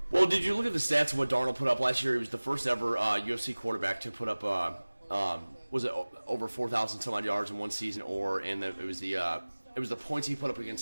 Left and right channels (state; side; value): inverted; both; correlation -1.00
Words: Well, did you look at the stats of what Darnold put up last year? He was the first ever UFC quarterback to put up, was it over 4,000 some odd yards in one season, it was the points he put up